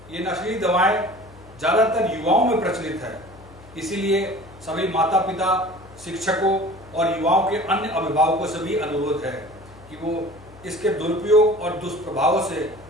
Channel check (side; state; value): left; noise; hum, 22 dB below the sound